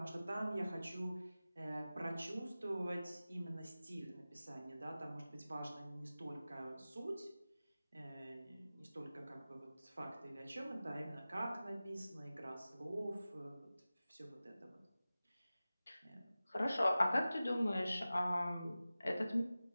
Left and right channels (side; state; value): both; inverted; correlation -0.96